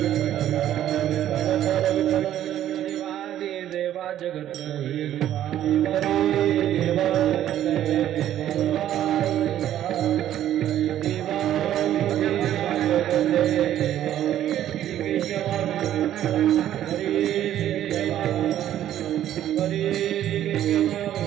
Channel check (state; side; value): quieter; left; 11.7 dB